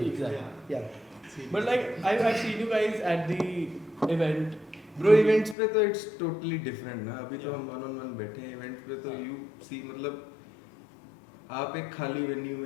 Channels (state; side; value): drops out; right; at 5.6 s